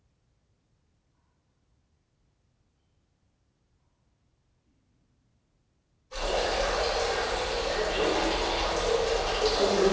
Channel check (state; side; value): identical; both; correlation 1.00